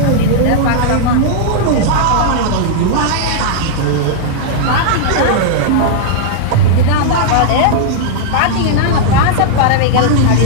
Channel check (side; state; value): both; different; correlation -0.01